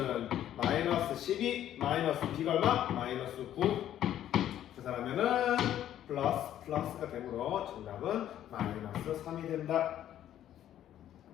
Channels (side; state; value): right; quieter; 11.5 dB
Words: 마이너스 12 마이너스 b가 얼마? 마이너스 9. 계산하면은 플러스가 되므로 정답은 마이너스 3이 된다.